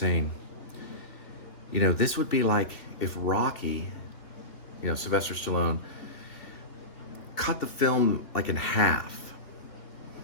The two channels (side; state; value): right; late; 2.8 ms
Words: you know, this would be like if Rocky, you know, Sylvester Stallone, cut the film like in half